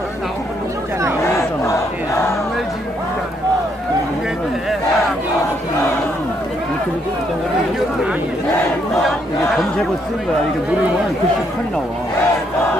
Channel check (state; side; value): normal; both; correlation 0.73